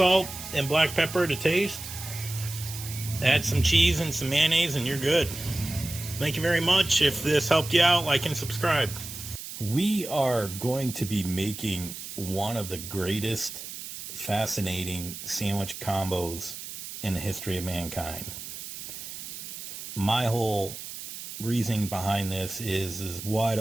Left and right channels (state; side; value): noise; right; hiss, 10 dB below the sound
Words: and black pepper to taste. Add some cheese and some mayonnaise and you're good. Thank you very much. If this helped you out, like and subscribe. We are going to be making one of the greatest fascinating sandwich combos in the history of mankind. My whole reasoning behind this is why